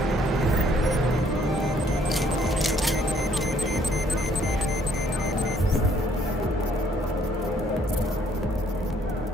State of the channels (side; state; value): both; normal; correlation 0.64